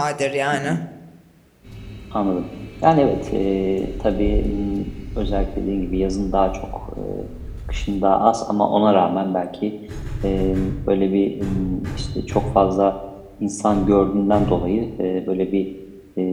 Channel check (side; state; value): both; identical; correlation 1.00